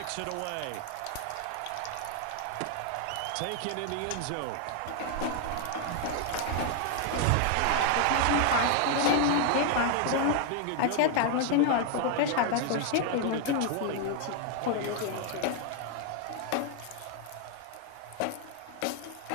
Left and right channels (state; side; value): different; both; correlation 0.00